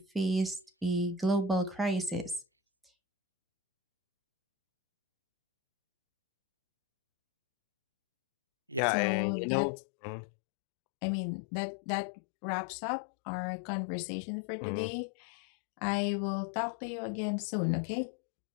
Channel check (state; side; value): drops out; right; at 8.8 s